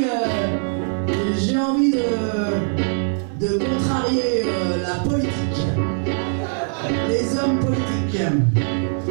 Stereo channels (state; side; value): silent; left; 65 dB below the other